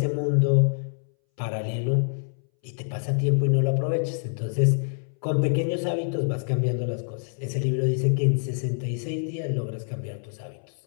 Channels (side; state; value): right; silent; 61 dB below the other